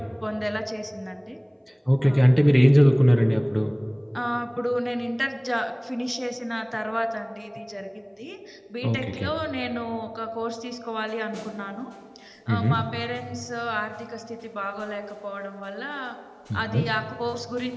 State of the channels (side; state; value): both; identical; correlation 1.00